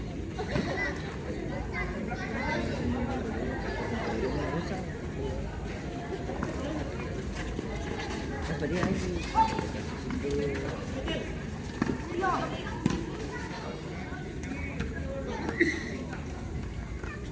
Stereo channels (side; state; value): both; identical; correlation 1.00